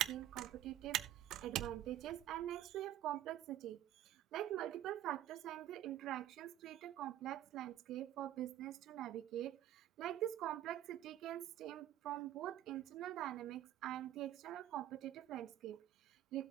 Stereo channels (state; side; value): quieter; left; 12.8 dB